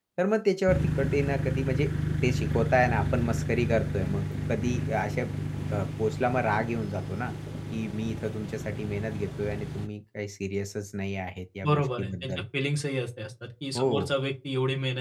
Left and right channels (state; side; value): identical; both; correlation 1.00